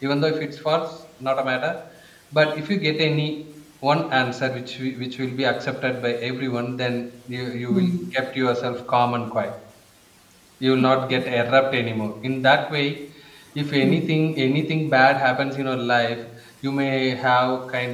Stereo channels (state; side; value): identical; both; correlation 1.00